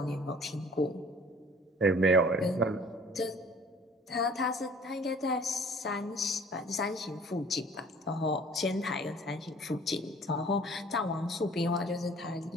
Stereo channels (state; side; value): normal; both; correlation 0.52